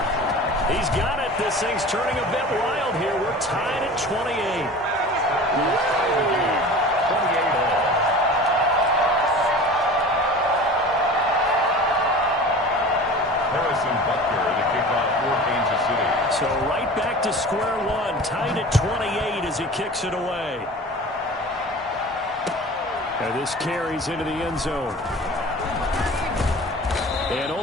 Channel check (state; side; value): normal; both; correlation 0.38